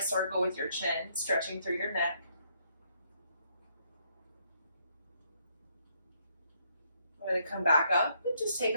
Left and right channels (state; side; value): inverted; both; correlation -0.72